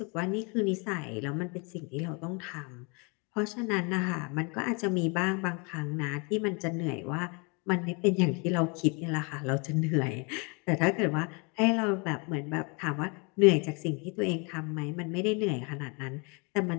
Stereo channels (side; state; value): right; quieter; 32.1 dB